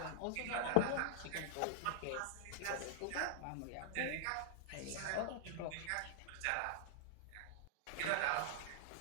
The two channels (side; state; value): both; different; correlation -0.01